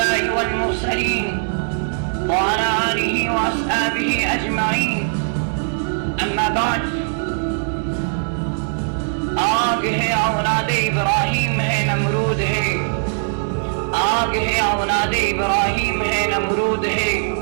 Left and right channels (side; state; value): left; silent; digital silence